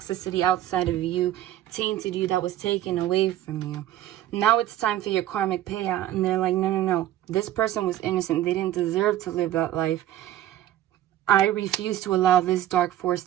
outside of you, tainted you, that was taken away from you. Now it's time for your karmic payout. And they're like, no. This person was innocent. They didn't deserve to live that life. I refuse to allow this dark force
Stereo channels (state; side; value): quieter; left; 13.0 dB